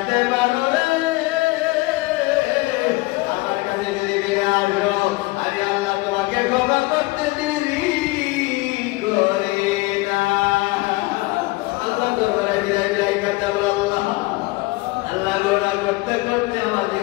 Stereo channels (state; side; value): quieter; right; 22.3 dB